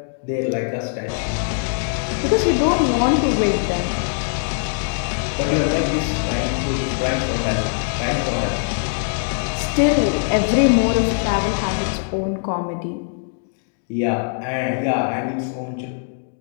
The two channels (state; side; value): silent; right; 65 dB below the other